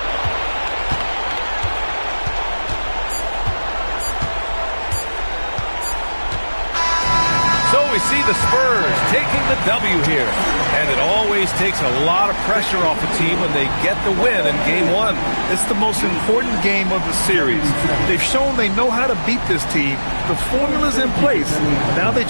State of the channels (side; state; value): both; inverted; correlation -1.00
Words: So we see the Spurs taking the W here. And it always takes a lot of pressure off a team when they get the win in game one. It's the most important game of the series. They've shown they know how to beat this team. The formula's in place. Now they